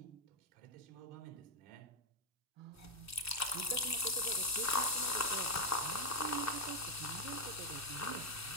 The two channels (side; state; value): both; normal; correlation 0.02